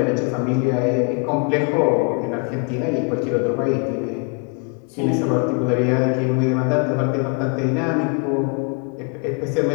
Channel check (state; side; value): quieter; right; 35.3 dB